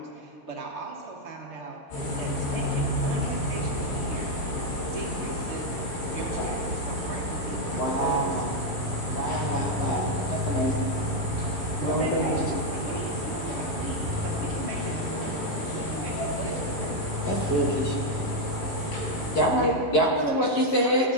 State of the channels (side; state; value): right; late; 11 ms